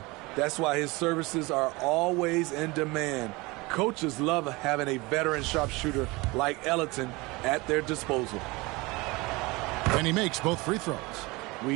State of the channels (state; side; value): quieter; left; 23.7 dB